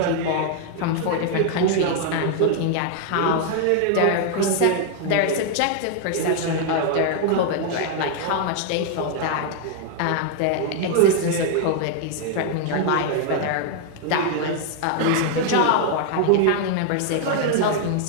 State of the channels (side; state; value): both; different; correlation 0.00